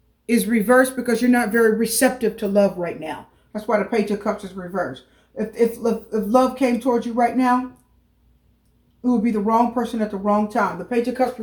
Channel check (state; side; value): identical; both; correlation 1.00